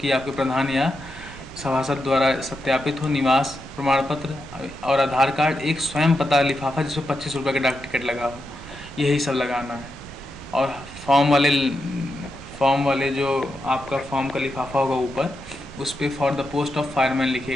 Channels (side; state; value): both; normal; correlation 0.86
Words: आपके प्रधान या सभासद द्वारा सत्यापित हो, निवास प्रमाण पत्र, और आधार कार्ड, एक स्वयं पता लिफाफा जिसमें 25 रुपये का डाक टिकट लगा हो, यही सब लगाना है। और फॉर्म वाले जो आपका फॉर्म का लिफाफा होगा ऊपर, उस पर for the post of fireman